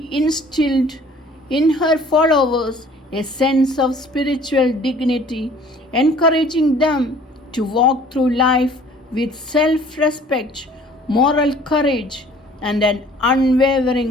instilled in her followers a sense of spiritual dignity, encouraging them to walk through life with self respect, moral courage, and an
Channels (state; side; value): normal; both; correlation 0.53